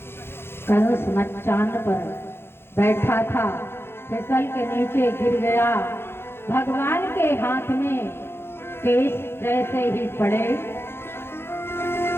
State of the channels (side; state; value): right; late; 0.11 ms